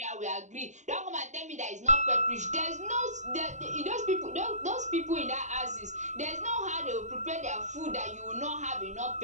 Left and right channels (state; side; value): late; left; 0.34 ms